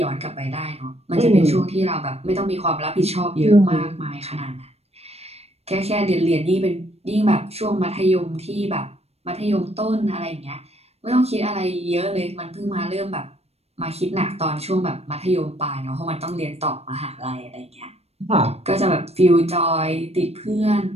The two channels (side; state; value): left; late; 0.30 ms